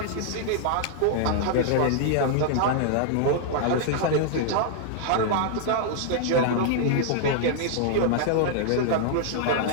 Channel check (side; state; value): both; different; correlation -0.01